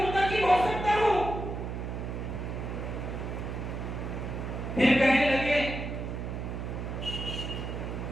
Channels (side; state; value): right; noise; hum, 5 dB below the sound